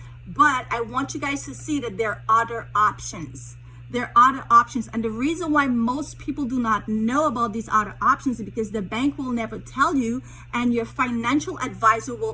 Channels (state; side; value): identical; both; correlation 1.00